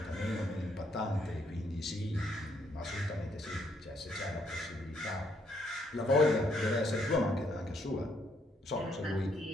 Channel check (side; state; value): both; normal; correlation 0.72